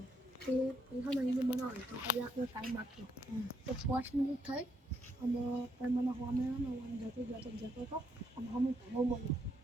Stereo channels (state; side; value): normal; both; correlation 0.75